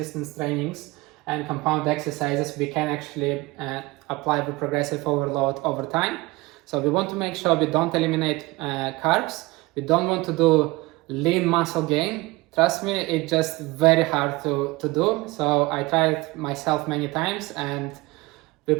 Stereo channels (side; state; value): left; quieter; 22.1 dB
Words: trainings and compound exercises, we can actually apply the progressive overload over time. So we want to make sure we don't eliminate carbs. We don't want to do lean muscle gain. Trust me, it's just very hard to do. So I tried myself many times and we